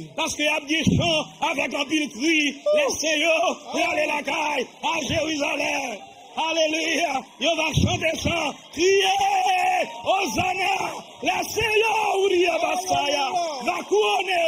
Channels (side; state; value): both; identical; correlation 1.00